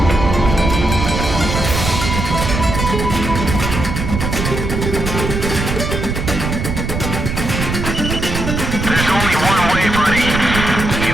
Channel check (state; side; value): noise; right; rumble, 3 dB below the sound